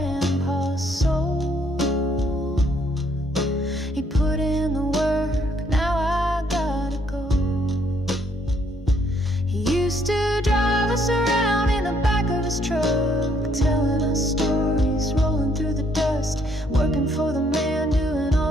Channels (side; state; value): both; normal; correlation 0.69